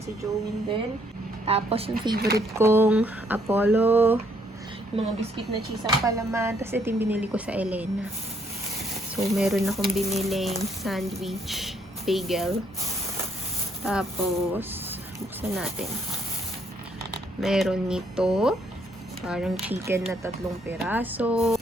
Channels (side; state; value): both; normal; correlation 0.69